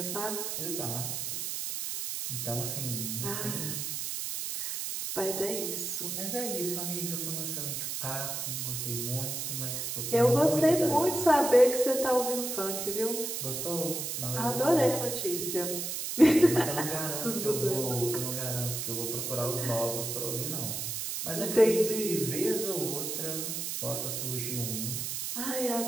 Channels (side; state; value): right; noise; hiss, 3 dB below the sound